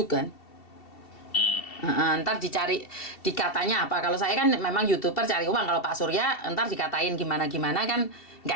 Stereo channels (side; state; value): right; late; 2.7 ms